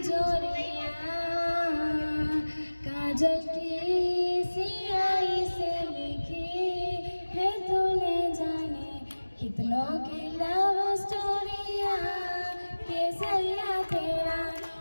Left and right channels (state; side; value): inverted; both; correlation -1.00